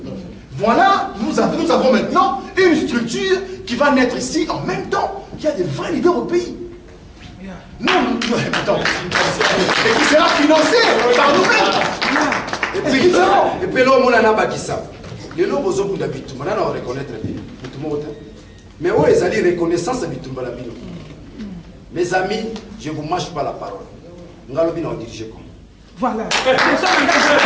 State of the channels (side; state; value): both; identical; correlation 1.00